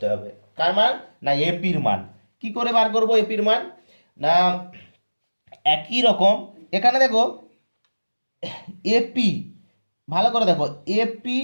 হবে। কার মান না এপির মান। কি করে বার করব এপির মান না, একই রকম এখানে দেখো এপি, ভালো করে দেখো এপি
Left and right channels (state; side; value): inverted; both; correlation -1.00